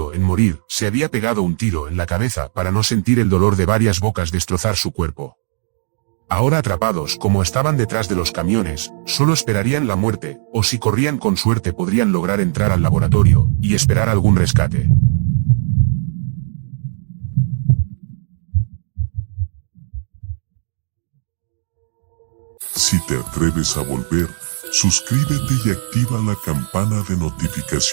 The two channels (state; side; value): silent; left; digital silence